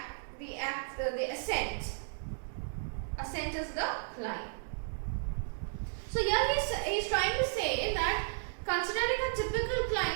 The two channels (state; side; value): silent; left; digital silence